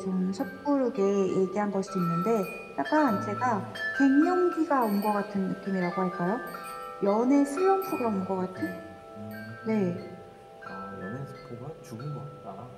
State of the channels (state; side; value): identical; both; correlation 1.00